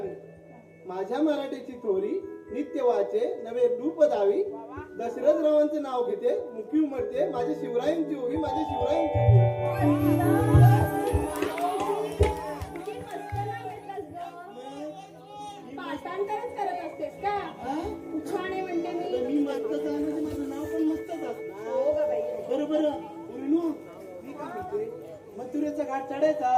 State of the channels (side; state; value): both; identical; correlation 1.00